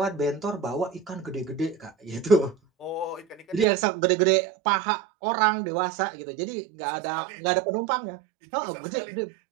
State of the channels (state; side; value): drops out; left; at 3.7 s